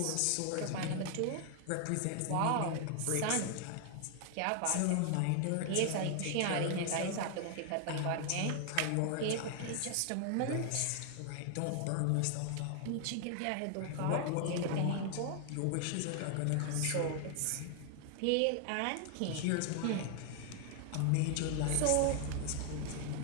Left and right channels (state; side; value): different; both; correlation 0.00